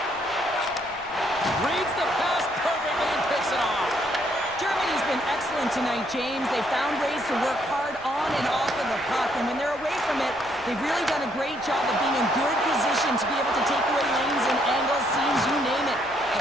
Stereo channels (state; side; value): noise; left; rumble, 25 dB below the sound